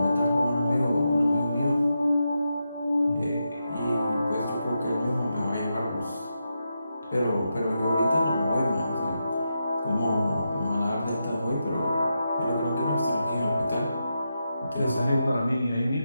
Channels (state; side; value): inverted; both; correlation -0.87